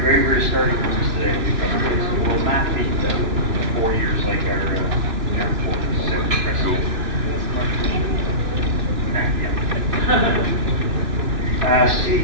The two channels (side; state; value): left; late; 2.8 ms